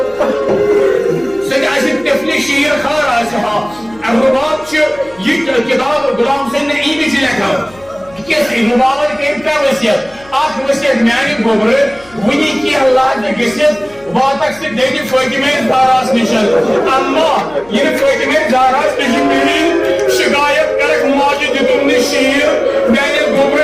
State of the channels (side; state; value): left; noise; hum, 26 dB below the sound